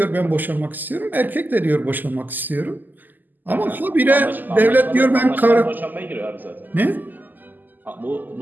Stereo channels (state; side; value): late; left; 0.086 ms